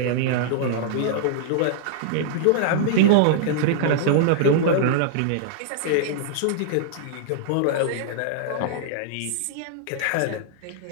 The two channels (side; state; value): both; different; correlation -0.01